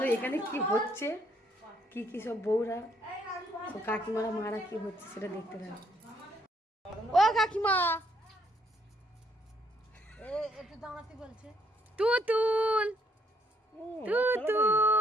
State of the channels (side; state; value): both; normal; correlation 0.69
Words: এখানে কি হচ্ছে কি কি সব বউরা তো কাকিমারা মারা কি হচ্ছে সেটা দেখতে থাকো। ও কাকিমা একটু দাঁড়াতে বলছে তুতুল